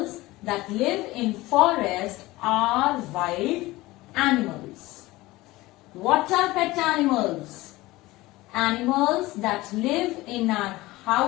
that live in forest are wild animals. What are pet animals? Animals that live in our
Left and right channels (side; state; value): right; quieter; 19.2 dB